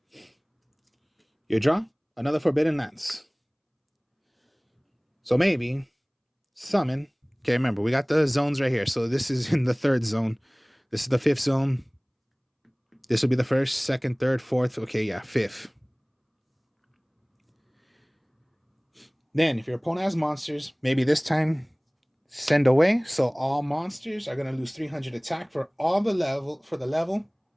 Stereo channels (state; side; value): identical; both; correlation 1.00